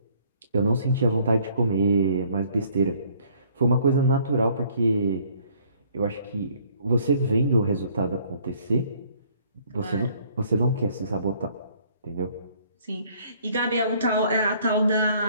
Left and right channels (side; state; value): both; inverted; correlation -0.61